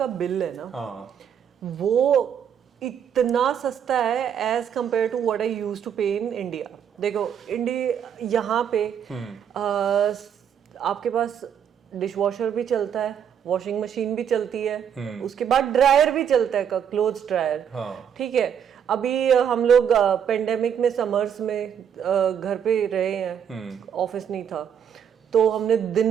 बिल है ना, वो इतना सस्ता है as compared to what I used to pay in India. देखो इंडिया यहाँ पे आपके पास डिश वॉशर भी चलता है, वॉशिंग मशीन भी चलती है, उसके बाद ड्रायर भी चलता है, क्लोथ्स ड्रायर। ठीक है, अभी हम लोग पेंडेमिक में समर्स में घर पे रहे हैं, ऑफिस नहीं था, तो हमने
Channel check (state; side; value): quieter; left; 8.4 dB